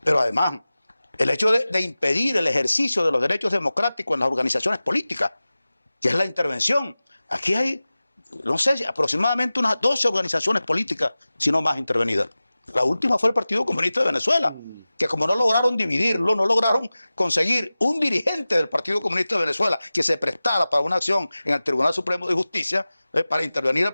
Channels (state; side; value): inverted; both; correlation -0.97